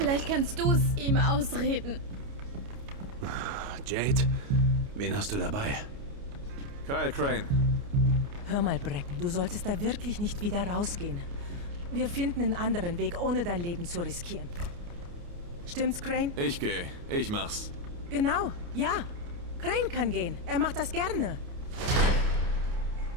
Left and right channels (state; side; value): late; left; 29 ms